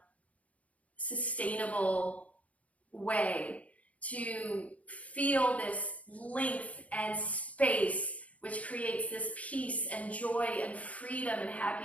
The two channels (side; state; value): right; late; 0.067 ms